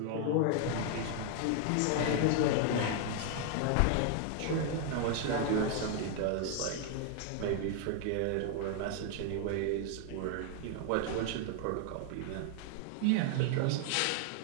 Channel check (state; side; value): different; both; correlation 0.00